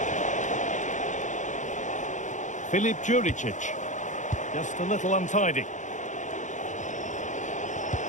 Filip Juricic. Just a little untidy.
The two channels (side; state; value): right; late; 0.36 ms